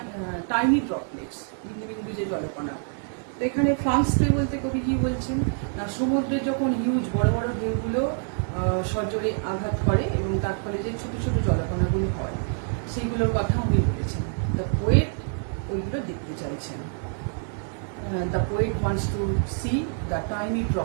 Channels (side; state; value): left; silent; 55 dB below the other